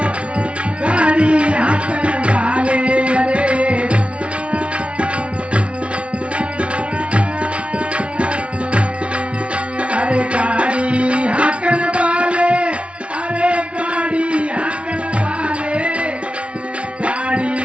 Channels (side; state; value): left; late; 0.060 ms